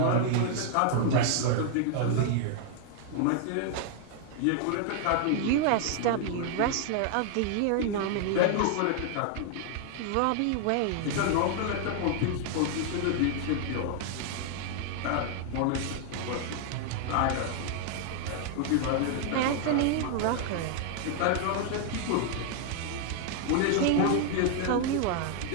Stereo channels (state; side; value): different; both; correlation 0.00